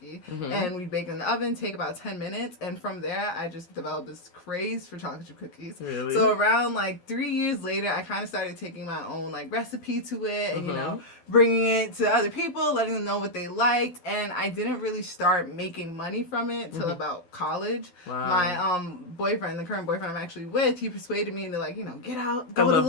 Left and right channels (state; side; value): late; right; 12 ms